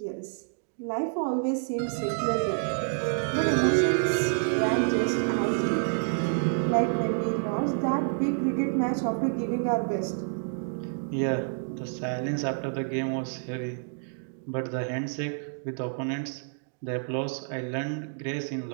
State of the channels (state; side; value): silent; left; digital silence